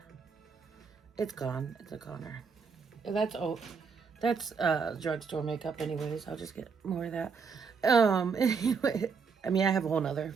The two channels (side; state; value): left; quieter; 5.5 dB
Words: It's gone. It's a goner. That's drugstore makeup anyways. I'll just get more of that. Anyway, I mean, I have a whole nother